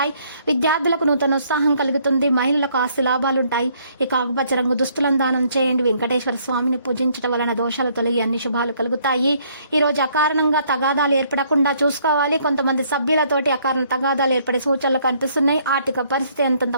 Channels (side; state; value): both; inverted; correlation -0.65